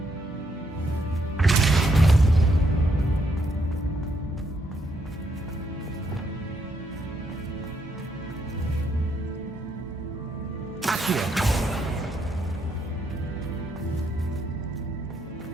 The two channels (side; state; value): both; normal; correlation 0.76